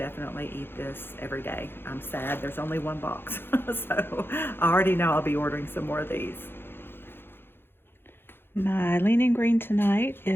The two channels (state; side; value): late; right; 0.10 ms